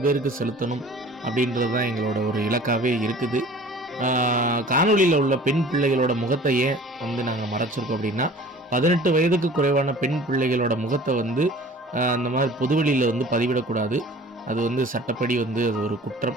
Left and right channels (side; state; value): both; normal; correlation 0.46